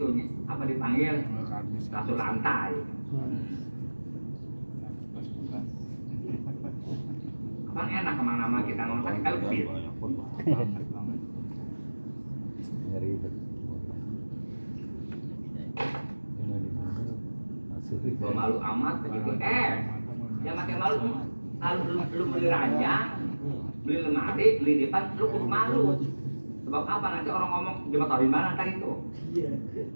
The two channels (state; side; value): inverted; both; correlation -1.00